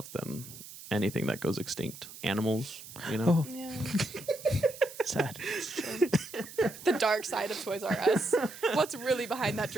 than anything that goes extinct. Animals, you know? Oh. Yeah. Sad. The dark side of Toys R Us. What's really behind that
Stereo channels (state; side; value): noise; right; hiss, 15 dB below the sound